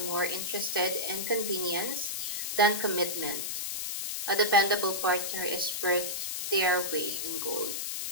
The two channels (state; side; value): noise; left; hiss, 2 dB below the sound